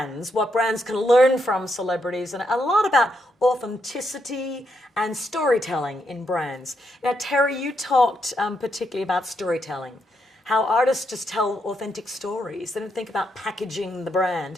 what brands can learn from celebrities, and a lot about authenticity and storytelling in brands. Now, Terry, you talked particularly about storytelling, how artists just tell authentic stories. They don't think about packaging the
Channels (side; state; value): both; normal; correlation 0.79